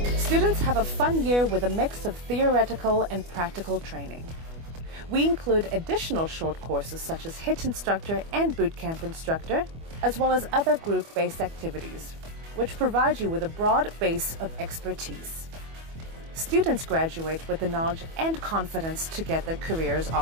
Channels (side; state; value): left; late; 25 ms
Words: Students have a fun year with a mix of theoretical and practical training. We include additional short courses such as HIIT instructor and bootcamp instructor, as well as other group-based activities, which provide you with a broad base of expertise. Students graduate with the knowledge and confidence to get their careers